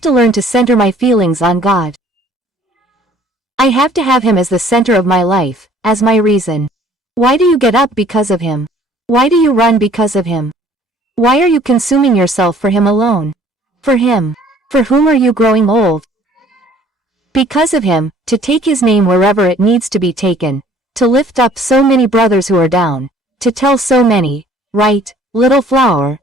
to learn to center my feelings on God. I have to have him as the center of my life, as my reason. Why do you get up because of him? Why do you run because of him? Why are you consuming yourself for him alone? For him. For whom are you growing old? Because of him, to take his name wherever it needs to be taken, to lift up so many brothers who are down, to tell so many, right, little flower,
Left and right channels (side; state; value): both; normal; correlation 0.56